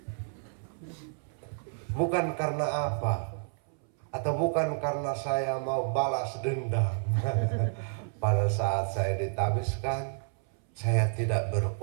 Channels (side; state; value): left; silent; 58 dB below the other